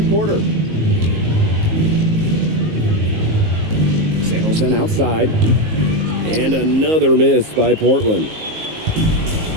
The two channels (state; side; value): late; left; 19 ms